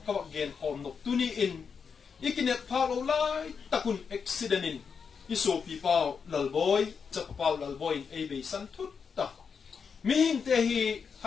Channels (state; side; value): quieter; right; 6.1 dB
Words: kawak gen hom no tuni in ikinet phalo lai takun accident in iso pi pau lalboy chap pau lalboy ei be san thut ta mi hing te hi